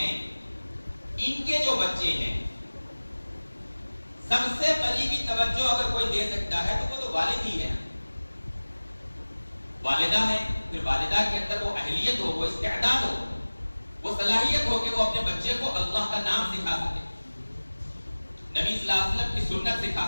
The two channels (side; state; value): both; inverted; correlation -1.00